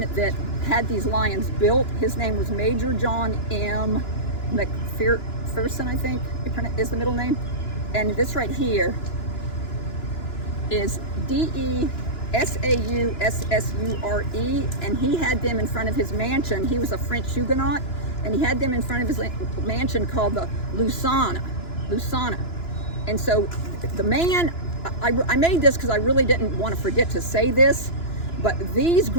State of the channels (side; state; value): right; late; 2.9 ms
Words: that had these lions built. His name was Major John M. McPherson, I think is the middle name. And this right here is DeSaussure, and he had them in front of his mansion. He was a French Huguenot, and he had them in front of his mansion called the Lusana. And so the man, I made this because I really didn't want to forget to say this, but these